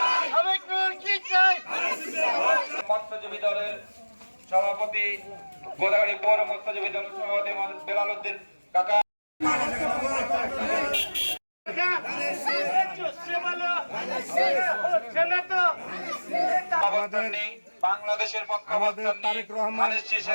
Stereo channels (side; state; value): both; inverted; correlation -1.00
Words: মৎস্যজীবী দলের সভাপতি, গোদাগাড়ি পৌর মৎস্যজীবী দলের সভাপতি বেলাল উদ্দিন কাকা, বাংলাদেশের আমাদের তারেক রহমান